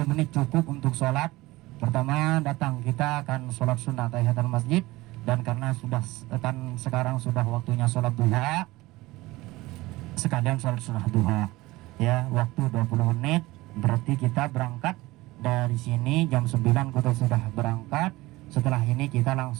menit cukup untuk sholat. Pertama datang kita akan sholat sunnah tahiyatul masjid, dan karena sudah kan sekarang sudah waktunya sholat duha, sekalian sholat sunnah duha ya, waktu 20 menit. Berarti kita berangkat dari sini jam 9 kita sudah berangkat. Setelah ini kita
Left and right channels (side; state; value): left; quieter; 19.8 dB